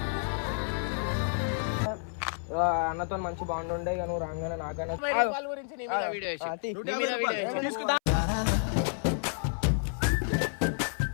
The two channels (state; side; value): silent; right; 58 dB below the other